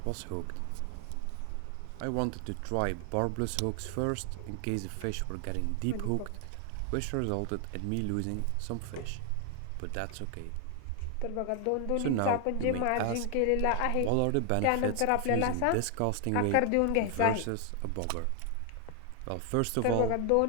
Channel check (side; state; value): both; different; correlation 0.00